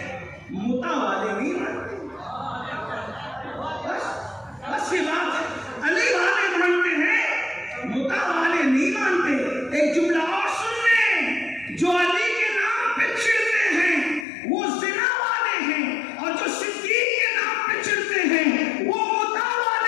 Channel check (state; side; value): drops out; right; at 14.2 s